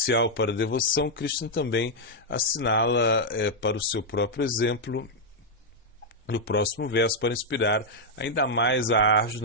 para a devoção, Krishna também assinala para o seu próprio exemplo no próximo verso para inspirar ainda mais a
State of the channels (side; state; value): both; normal; correlation -0.02